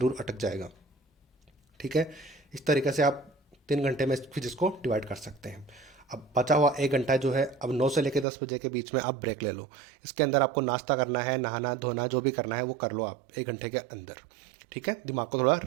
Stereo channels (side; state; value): left; drops out; at 8.2 s